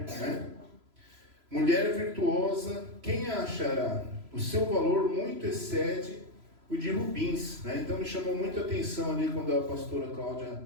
né? Mulher virtuosa, quem a achará? O seu valor muito excede o de rubins, né? Então me chamou muito a atenção ali quando a pastora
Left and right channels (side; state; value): left; late; 3.0 ms